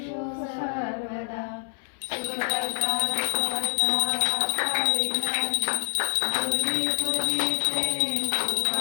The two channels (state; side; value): silent; right; 61 dB below the other